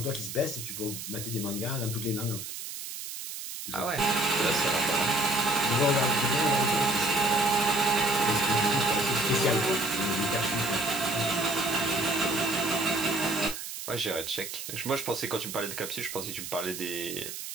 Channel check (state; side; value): noise; right; hiss, 8 dB below the sound